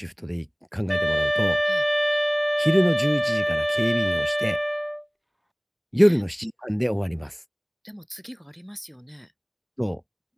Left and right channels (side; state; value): both; identical; correlation 1.00